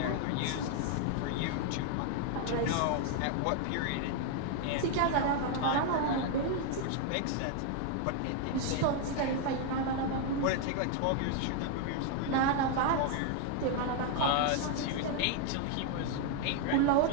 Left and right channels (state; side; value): different; both; correlation 0.00